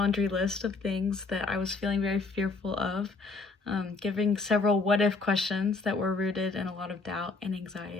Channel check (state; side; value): quieter; right; 3.9 dB